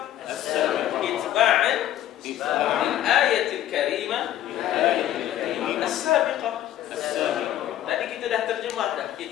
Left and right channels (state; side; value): quieter; right; 12.4 dB